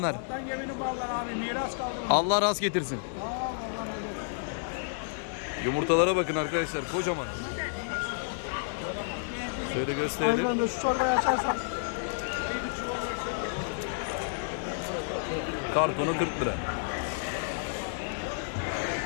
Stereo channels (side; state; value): right; silent; 57 dB below the other